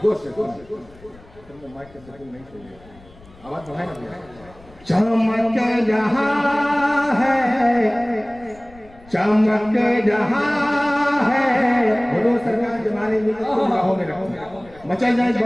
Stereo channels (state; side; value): noise; left; rumble, 24 dB below the sound